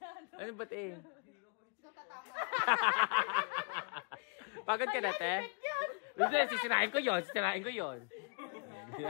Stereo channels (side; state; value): right; quieter; 36.4 dB